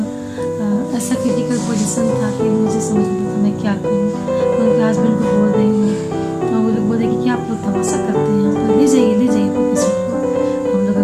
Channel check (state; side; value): identical; both; correlation 1.00